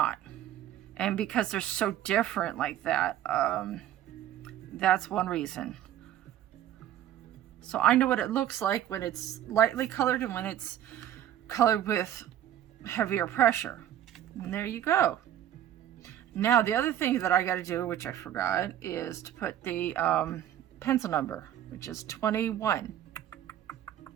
And because they're so different like that, that's one reason. So I know what it looks like when it's lightly colored and when it's colored with heavier pressure. And there you go. Now the other thing that I got to do, which I forgot, is to put the pencil number, which is 21.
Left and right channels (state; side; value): quieter; left; 11.6 dB